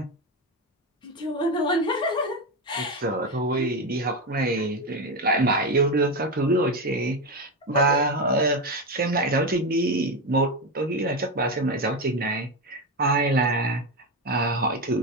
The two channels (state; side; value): normal; both; correlation 0.14